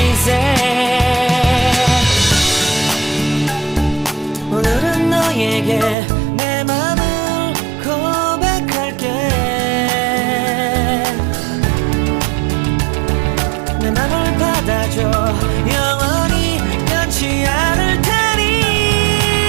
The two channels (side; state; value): left; drops out; at 6.0 s